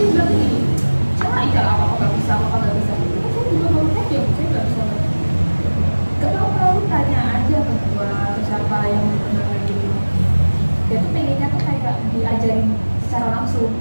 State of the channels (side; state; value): both; inverted; correlation -1.00